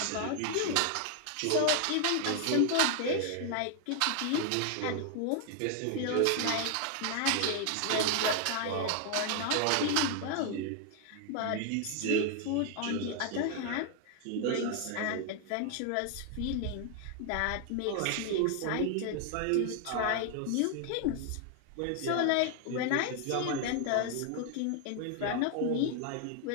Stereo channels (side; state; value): both; different; correlation 0.00